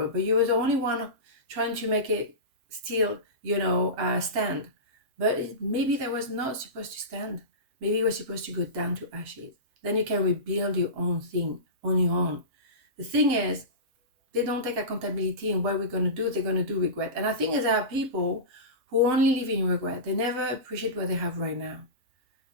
but you were the only one trying to make it still, stand. But maybe that was not supposed to stand. Maybe it was supposed to go down to ashes. Then you can rebuild your own thing on your own. The thing is, they don't take accountability in what we're going to do. They're going to do regret. And I think there are people who only live in regret. They never appreciate what they have right now.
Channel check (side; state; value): left; late; 7.8 ms